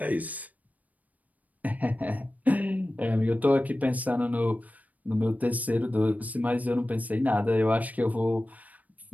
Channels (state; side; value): late; left; 0.074 ms